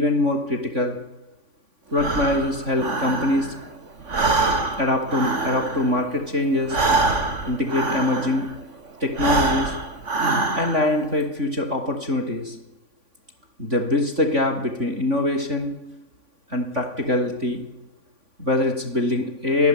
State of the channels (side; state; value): left; late; 3.5 ms